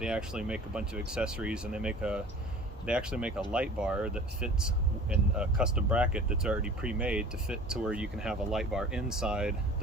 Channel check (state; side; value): normal; both; correlation 0.44